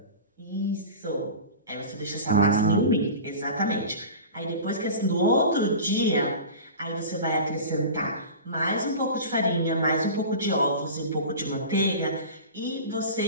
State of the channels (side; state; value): both; inverted; correlation -0.35